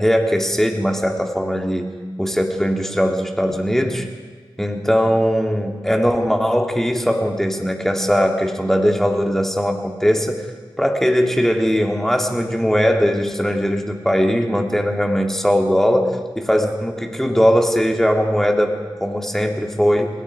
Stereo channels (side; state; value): both; normal; correlation 0.96